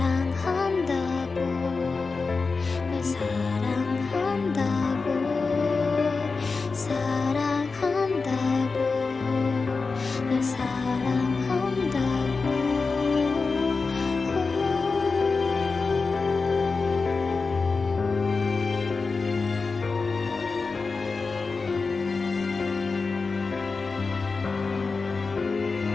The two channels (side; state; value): right; quieter; 4.3 dB